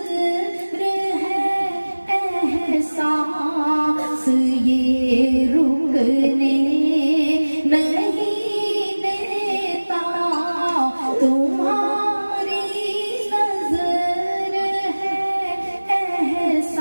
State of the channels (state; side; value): inverted; both; correlation -1.00